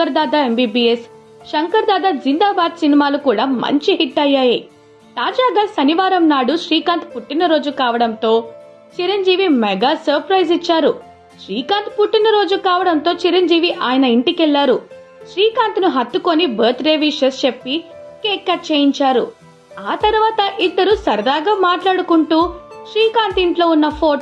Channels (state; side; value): identical; both; correlation 1.00